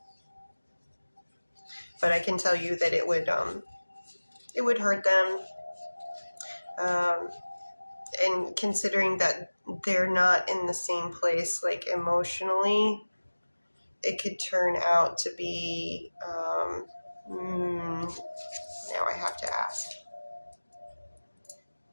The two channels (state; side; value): inverted; both; correlation -1.00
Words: But I can tell you that it would hurt them. And considering that they're not in the same place, like emotionally, it could turn out to be, now I have to ask.